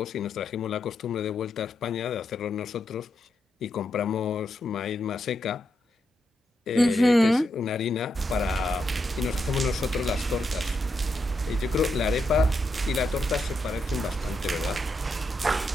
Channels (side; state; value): both; normal; correlation 0.83